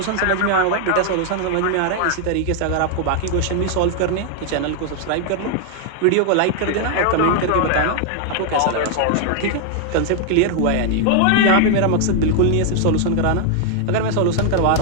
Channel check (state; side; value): different; both; correlation 0.00